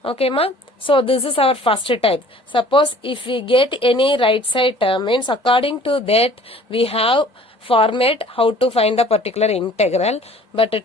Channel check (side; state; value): both; normal; correlation 0.51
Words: Okay, ma? So this is our first type. Suppose if we get any right side term, means according to that we have format how to find the particular integral, but